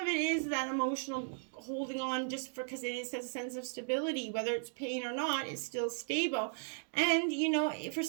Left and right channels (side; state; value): left; silent; 54 dB below the other